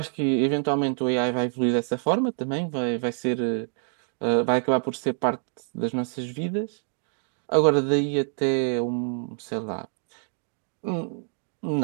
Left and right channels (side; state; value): left; silent; 55 dB below the other